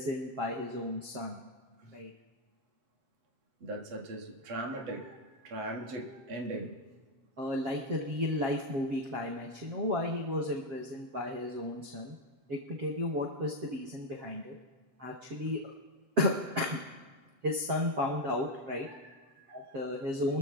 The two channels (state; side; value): late; left; 7.3 ms